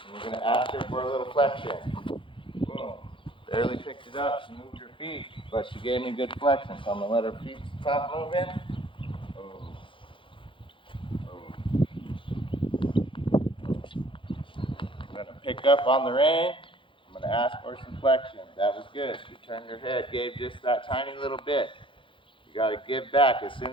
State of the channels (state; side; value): late; right; 0.25 ms